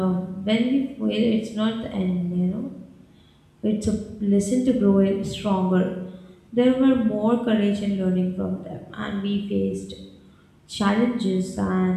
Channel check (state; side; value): identical; both; correlation 1.00